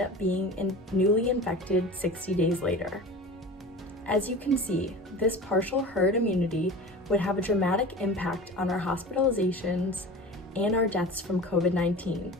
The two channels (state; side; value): normal; both; correlation 0.35